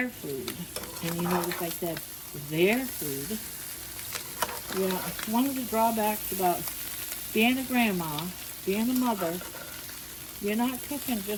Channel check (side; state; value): both; identical; correlation 1.00